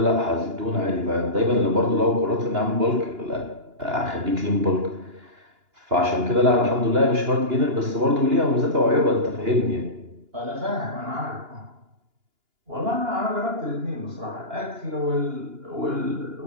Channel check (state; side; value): late; left; 2.9 ms